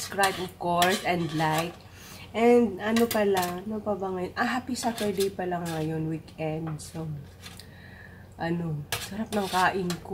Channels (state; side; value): identical; both; correlation 1.00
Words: of course, and like. And ano pala, ano pa ba ngayon? Happy Saturday pala ngayon, weekend. So, ano, sarap ng kain